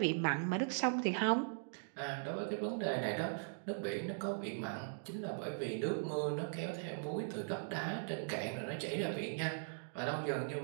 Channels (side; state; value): left; silent; digital silence